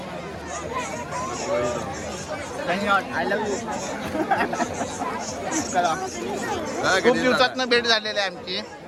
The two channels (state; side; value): identical; both; correlation 1.00